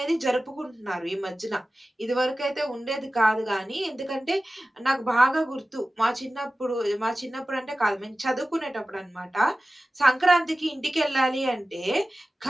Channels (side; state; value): both; normal; correlation 0.96